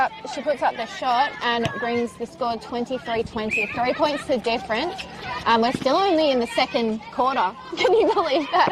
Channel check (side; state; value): both; identical; correlation 1.00